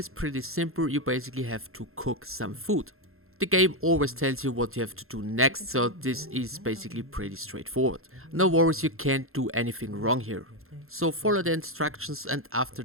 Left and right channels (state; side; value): late; left; 0.62 ms